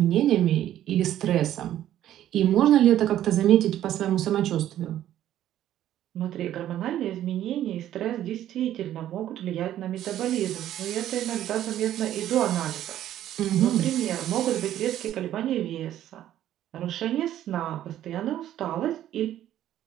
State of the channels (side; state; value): left; quieter; 12.1 dB